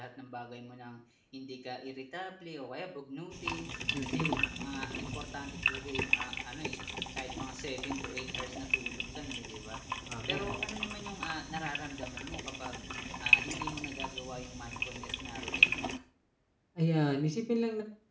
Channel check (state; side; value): identical; both; correlation 1.00